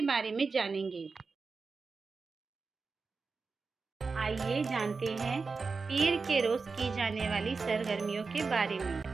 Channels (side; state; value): left; quieter; 4.5 dB